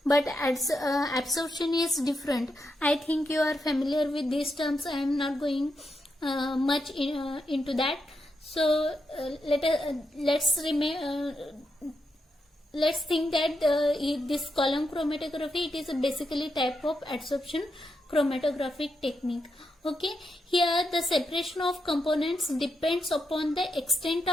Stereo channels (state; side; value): normal; both; correlation 0.84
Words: but absorption is different. I think you are familiar with these terms. I am not going much into that. So let's think that this column chromatography, it is basically type of adsorption chromatographic technique. Okay, here the separation of components depends upon the extent